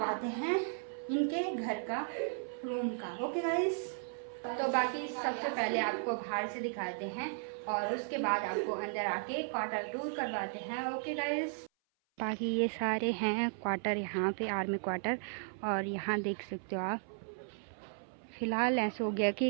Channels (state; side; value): silent; left; 54 dB below the other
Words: हैं इनके घर का, रूम का। ओके गाइस, तो बाकी सबसे पहले आपको बाहर से दिखाते हैं और उसके बाद आपको अंदर आके क्वार्टर टूर करवाते हैं। ओके गाइस, बाकी ये सारे हैं क्वार्टर, यहाँ पे आर्मी क्वार्टर। और यहाँ देख सकते हो आप, फ़िलहाल ऐसा हो गया